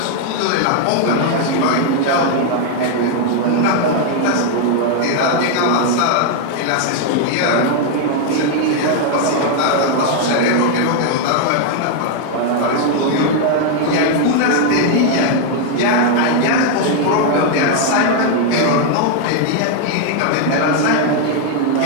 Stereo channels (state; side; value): different; both; correlation 0.00